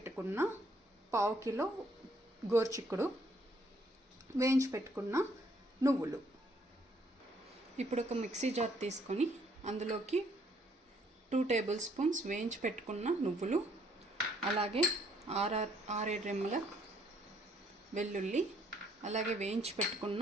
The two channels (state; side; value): normal; both; correlation 0.66